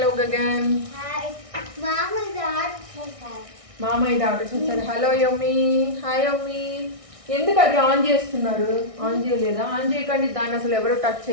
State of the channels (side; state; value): left; late; 1.6 ms